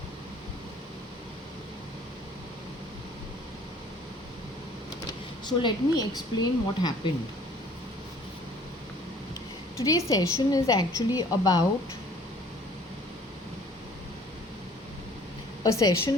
So let me explain what happened. Today's session is actually about a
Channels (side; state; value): both; normal; correlation 0.54